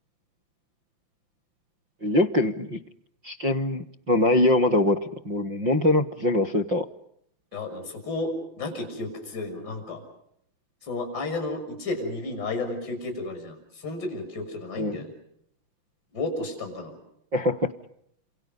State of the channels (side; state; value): left; late; 5.8 ms